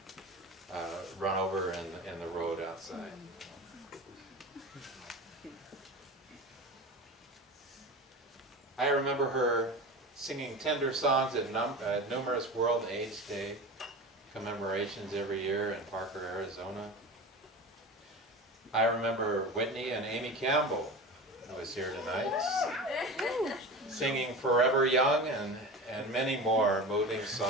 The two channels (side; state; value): both; normal; correlation 0.30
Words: run over in the road outside. I remember her singing tender songs at numerous World AIDS Day commemorations every year in Parker, Arizona. I remember Whitney and Amy Campbell, who was here tonight, singing Forever Young and many more moving